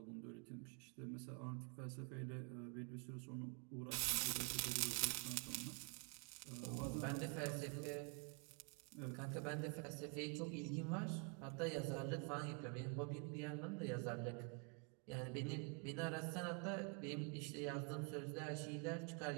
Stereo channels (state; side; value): quieter; left; 36.4 dB